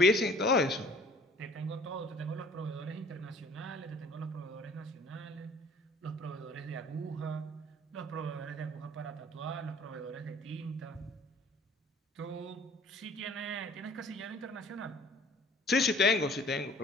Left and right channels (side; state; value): both; normal; correlation 0.52